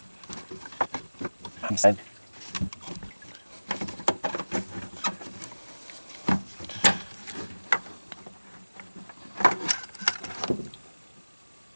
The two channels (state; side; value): inverted; both; correlation -1.00